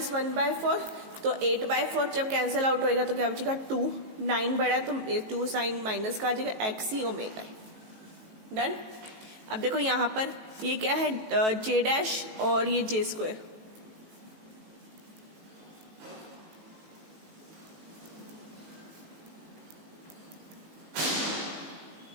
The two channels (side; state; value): left; late; 19 ms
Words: 1/4 तो 8/4 जब कैंसिल आउट होएगा तो क्या बचेगा 2, 9 बड़ा है तो 2 साइन माइनस का आ जाएगा एक्स ई ओमेगा ई। डन, अब देखो यहां पर ये क्या है, जे डैश और ये जे स्क्वायर,